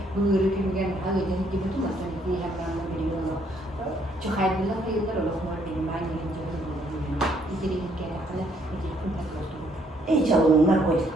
bulurum ki ben hadi dedi ki bütün masal bir yapılan bir yolu. Çok hayırlı kıyılar olur mu benim aynı yerimde bulundum. İdiri bir kere hani idiri kun takıldı. İyi çalınma koyduk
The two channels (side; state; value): both; normal; correlation 0.68